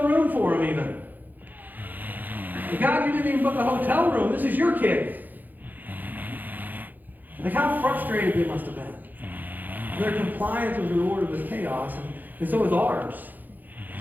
room for them even. But God, you didn't even book a hotel room. This is your kid. Like, how frustrated they must have been. Their compliance was rewarded with chaos, and so is ours.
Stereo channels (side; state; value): left; late; 0.085 ms